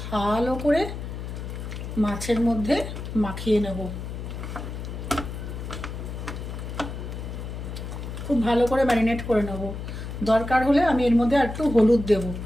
ভালো করে মাছের মধ্যে মাখিয়ে নেব। খুব ভালো করে ম্যারিনেট করে নেব। দরকার হলে আমি এর মধ্যে একটু হলুদ দেব।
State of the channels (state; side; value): noise; left; hum, 7 dB below the sound